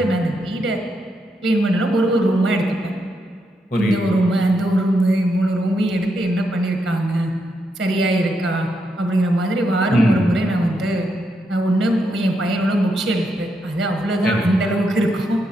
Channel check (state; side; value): normal; both; correlation 0.81